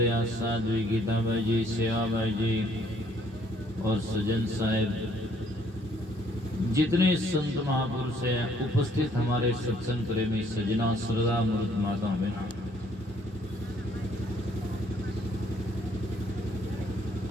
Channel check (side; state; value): both; normal; correlation 0.64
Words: साध्वी गीताबाई जी, सेवाबाई जी और सजन साहेब, जितने संत महापुरुष हैं उपस्थित, हमारे सत्संग प्रेमी सजना श्रद्धा मूर्त माता में,